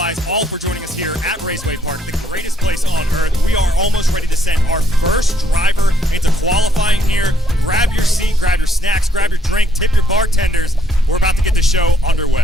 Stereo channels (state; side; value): normal; both; correlation 0.71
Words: Raceway Park, the greatest place on earth. We are almost ready to send our first driver into qualifying here. Grab your seat, grab your snacks, grab your drink, tip your bartenders. We're about to get the show underway.